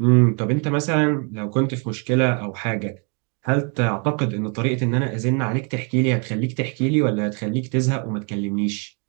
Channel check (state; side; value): quieter; left; 34.8 dB